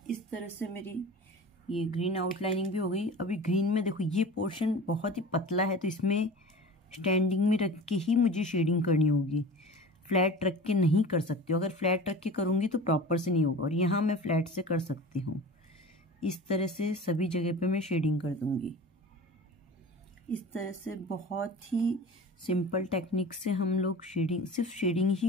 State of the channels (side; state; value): both; normal; correlation 0.36